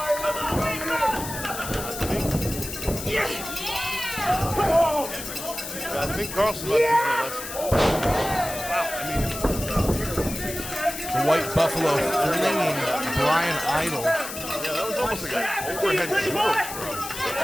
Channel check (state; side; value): noise; left; hiss, 9 dB below the sound